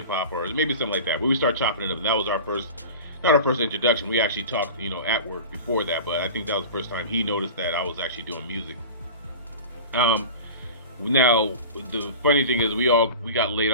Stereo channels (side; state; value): both; inverted; correlation -0.34